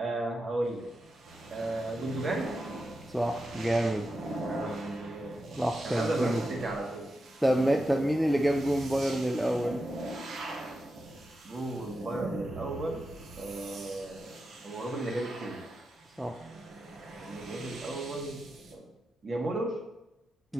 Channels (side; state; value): both; normal; correlation 0.89